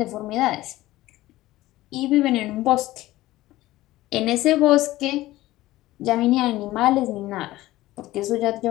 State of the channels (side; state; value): right; quieter; 16.8 dB